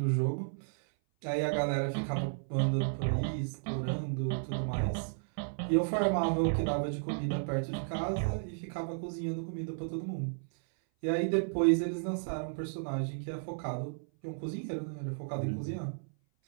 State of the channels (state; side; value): silent; left; 56 dB below the other